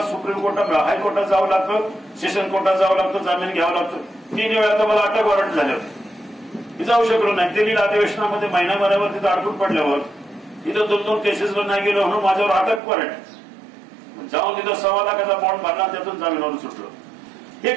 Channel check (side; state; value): left; drops out; at 12.8 s